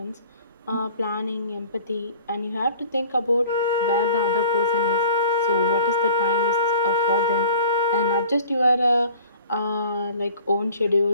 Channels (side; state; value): both; inverted; correlation -0.47